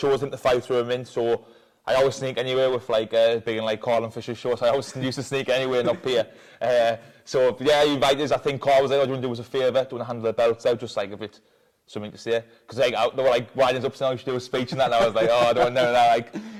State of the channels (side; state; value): both; identical; correlation 1.00